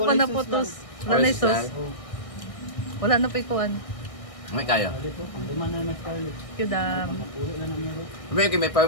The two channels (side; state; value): right; late; 1.6 ms